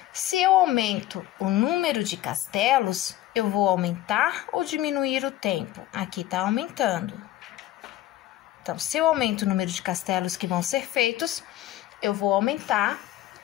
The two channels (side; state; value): right; quieter; 14.3 dB